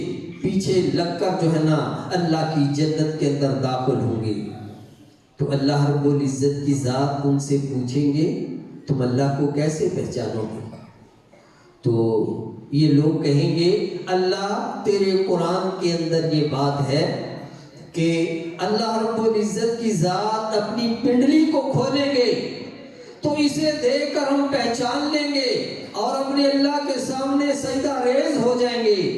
پیچھے لگ کر جو ہے نا اللہ کی جنت کے اندر داخل ہوں گے۔ تو اللہ رب العزت کی ذات ان سے پوچھیں گے تم اللہ کو کیسے پہچانو گے؟ تو یہ لوگ کہیں گے اللہ تیرے قرآن کے اندر یہ بات ہے کہ اللہ رب العزت کی ذات اپنی پنڈلی کو کھولیں گے تو اسے دیکھ کر ہم پہچان لیں گے اور اپنے اللہ کے سامنے سجدہ ریز ہو جائیں گے۔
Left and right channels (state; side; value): identical; both; correlation 1.00